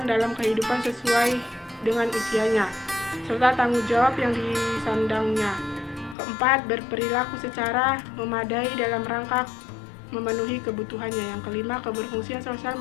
dalam kehidupan sesuai dengan usianya, serta tanggung jawab yang disandangnya. Keempat, berperilaku secara memadai dalam rangka memenuhi kebutuhannya. Yang kelima, keberfungsian sosial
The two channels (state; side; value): drops out; right; at 6.2 s